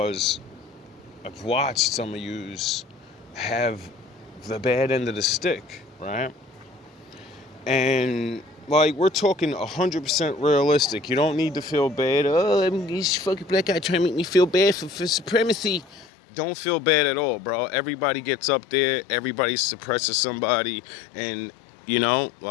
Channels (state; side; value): drops out; right; at 16.1 s